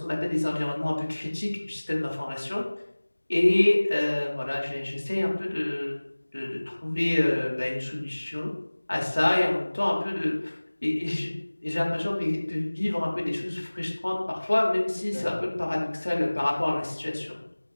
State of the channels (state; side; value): inverted; both; correlation -1.00